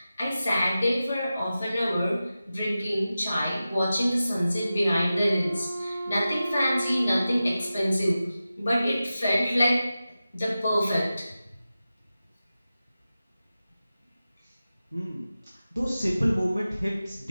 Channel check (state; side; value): inverted; both; correlation -0.94